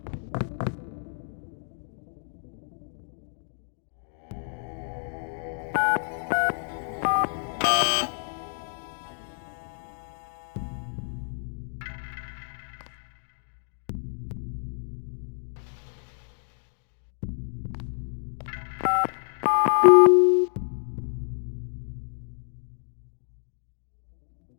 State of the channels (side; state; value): right; silent; 59 dB below the other